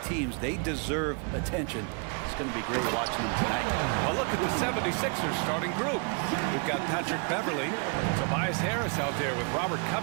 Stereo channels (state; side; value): quieter; left; 36.5 dB